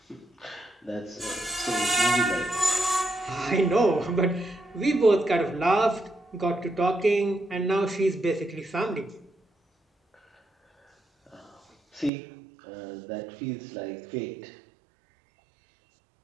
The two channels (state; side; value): drops out; left; at 12.1 s